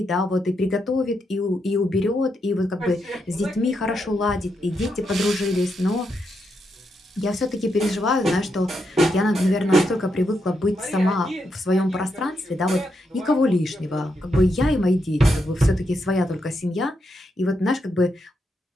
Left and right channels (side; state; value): both; normal; correlation 0.82